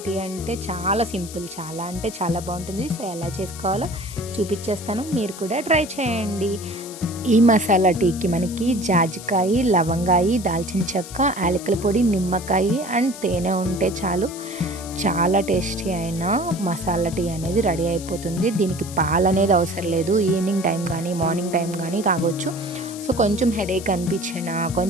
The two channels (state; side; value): noise; left; hiss, 14 dB below the sound